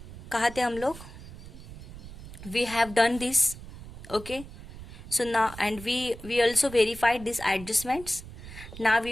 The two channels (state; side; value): noise; right; rumble, 14 dB below the sound